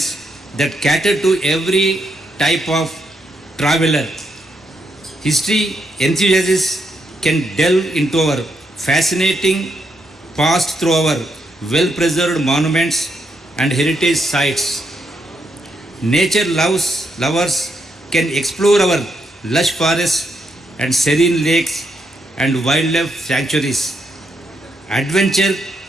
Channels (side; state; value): both; normal; correlation 0.79